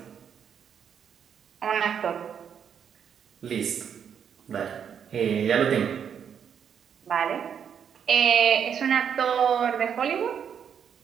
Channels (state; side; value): quieter; left; 7.9 dB